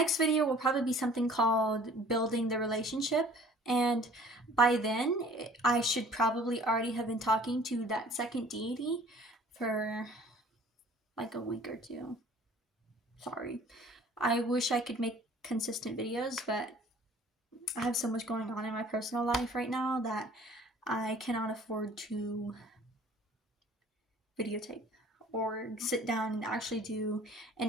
video will probably be something called Building the Relationship, and by then I should probably already have been talking to that second deity for like a week or two. Sorry. I wish I could make consistent videos, but I have so much going on in my personal life right now that I cannot afford to videotape or sit down and actually do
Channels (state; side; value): normal; both; correlation 0.50